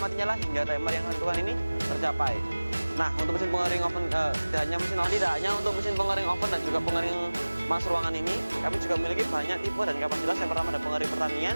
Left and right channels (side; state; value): both; inverted; correlation -1.00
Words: hingga timer yang kalian tentukan ini tercapai. Nah, untuk mesin pengering oven tidak hanya untuk mesin pengering oven dan juga pengering mas ruangan ini, kami juga memiliki banyak tipe dan kapasitas. Yang pertama ada pengering